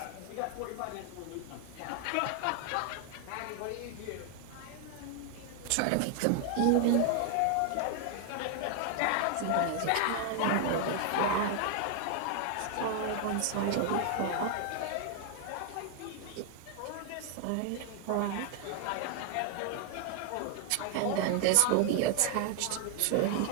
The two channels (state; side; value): different; both; correlation 0.00